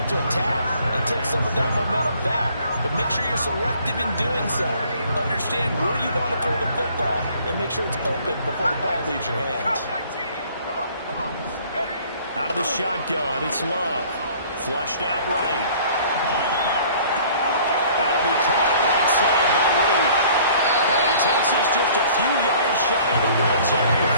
to attack and take some of that momentum back. But make sure you're selective in doing so. Understand where you want to throw the football and make sure it's open before the ball leaves your hands. Out of the shotgun, it's Love. Flushed out right. That'll be caught right side by Reed. And he takes us just a few yards shy of the red zone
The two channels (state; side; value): inverted; both; correlation -0.54